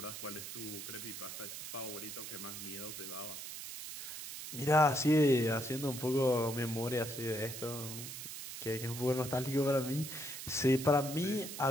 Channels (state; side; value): noise; right; hiss, 9 dB below the sound